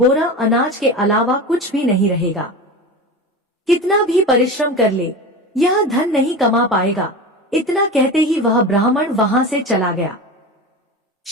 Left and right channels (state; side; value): normal; both; correlation 0.28